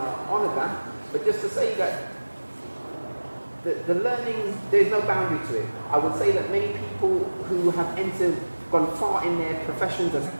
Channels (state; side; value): inverted; both; correlation -1.00